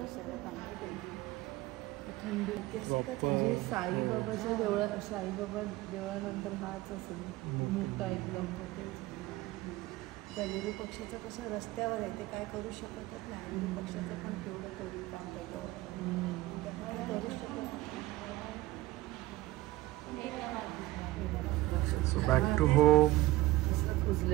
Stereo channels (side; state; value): left; quieter; 17.8 dB